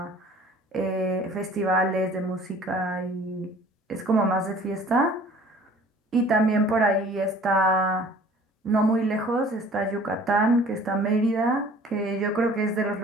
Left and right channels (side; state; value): both; normal; correlation 0.50